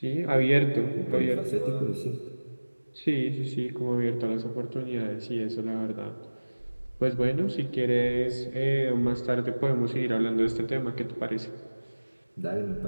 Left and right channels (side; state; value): both; inverted; correlation -1.00